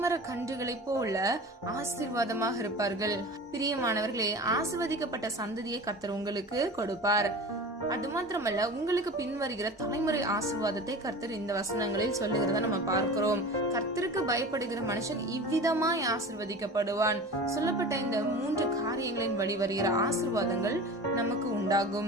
மர கன்றுகளை போல ஆசீர்வாதமாக இருப்பார்கள். பிரியமானவர்களே, ஆசீர்வதிக்கப்பட்ட சந்ததியை கர்த்தர் உங்களுக்கு கொடுப்பார். அது மாத்திரமல்ல, உங்களுக்கு பின்வருகிற தலைமுறை ஆசீர்வாதத்தை கர்த்தர் இந்த வசனங்களில் சொல்லுகிறத நம்ம பார்க்கிறோம். கர்த்தருக்கு பயப்படுகிற மனுஷன் இவ்விதமாய் ஆசீர்வதிக்கப்படுவான். சொல்லப்பட்ட இந்த 3 காரியங்களின் வழி வருகிற ஆசீர்வாதங்கள் நமக்கு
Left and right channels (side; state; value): both; normal; correlation 0.35